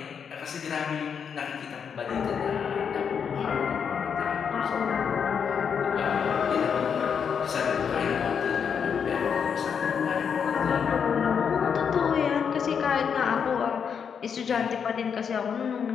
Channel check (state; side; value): quieter; right; 7.0 dB